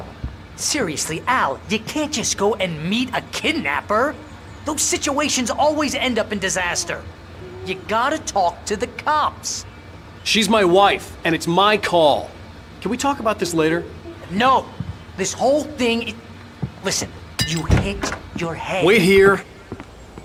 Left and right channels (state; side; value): identical; both; correlation 1.00